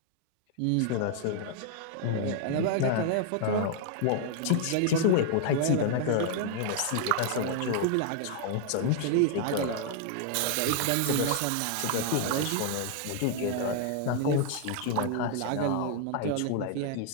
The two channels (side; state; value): both; different; correlation 0.00